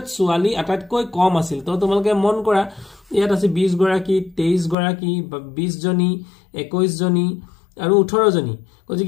ছোৱালী আটাইতকৈ কম আছিল তো তোমালোকে মন কৰা ইয়াত আছে 20 গৰাকী 23 গৰাকী 20 জনী 21 জনী আৰু 18 জনী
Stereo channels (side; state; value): right; drops out; at 4.8 s